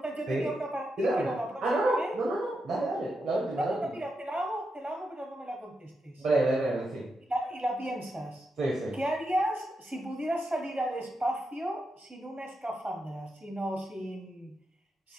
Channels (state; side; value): normal; both; correlation 0.85